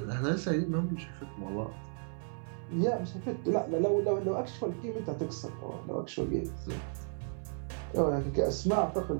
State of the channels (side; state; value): left; silent; 55 dB below the other